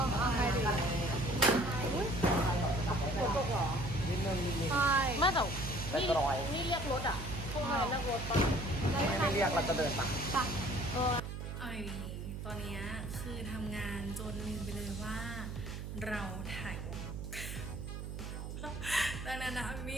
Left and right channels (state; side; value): noise; right; hum, 7 dB below the sound